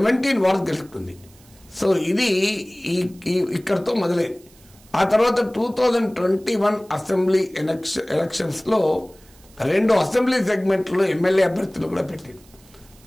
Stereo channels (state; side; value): noise; right; hiss, 27 dB below the sound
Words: వార్డ్స్ గెలుచుకుంది. సో ఇది ఇక్కడతో మొదలైంది. ఆ తర్వాత 2021 అసెంబ్లీ ఎలక్షన్స్లో 2 అసెంబ్లీ సెగ్మెంట్లో ఎమ్మెల్యే అభ్యర్థులు కూడా పెట్టింది.